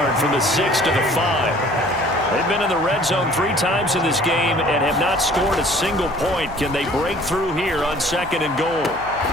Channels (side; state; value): right; noise; hum, 16 dB below the sound